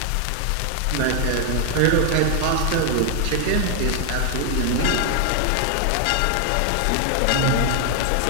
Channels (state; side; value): different; both; correlation 0.00